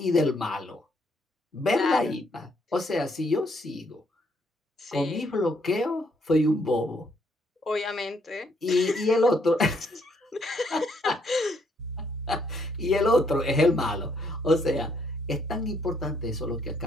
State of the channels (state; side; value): normal; both; correlation 0.70